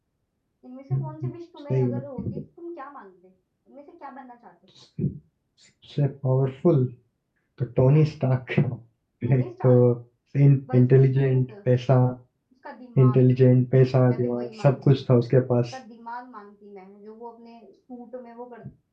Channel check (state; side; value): identical; both; correlation 1.00